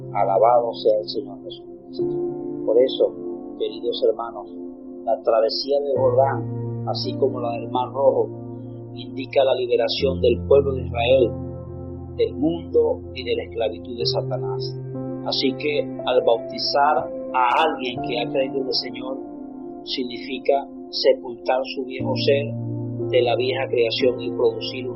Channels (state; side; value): identical; both; correlation 1.00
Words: Alabado sea el Señor Jesucristo. Por eso, queridos hermanos, la travesía del Jordán, así como la del Mar Rojo, indica la liberación del pueblo de Israel, del mundo y de la esclavitud de Satanás. Así que al bautizar a alguien que ha creído en el Señor, significa sepultar su viejo ser de la vieja creación y producir